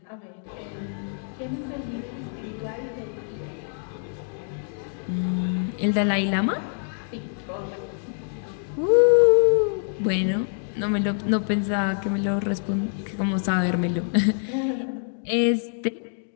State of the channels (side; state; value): right; silent; digital silence